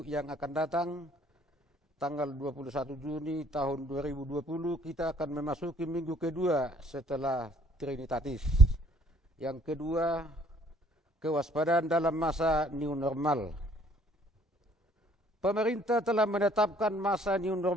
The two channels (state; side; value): normal; both; correlation 0.60